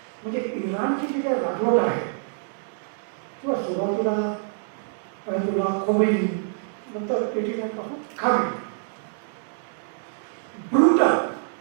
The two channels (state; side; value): silent; left; 61 dB below the other